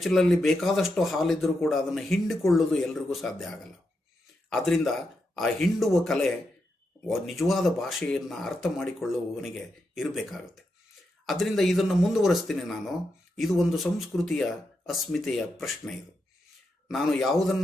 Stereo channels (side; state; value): both; normal; correlation 0.85